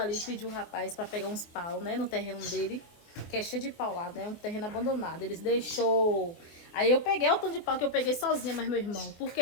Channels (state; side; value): late; right; 24 ms